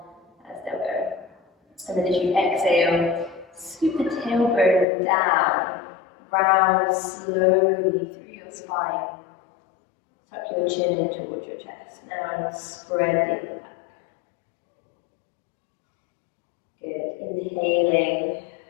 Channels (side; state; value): right; drops out; at 4.9 s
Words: as they'll go. And then as you exhale, scoop the tailbone down, round slowly through your spine. Tuck your chin in towards your chest. Now spread the upper back. Good. Inhaling,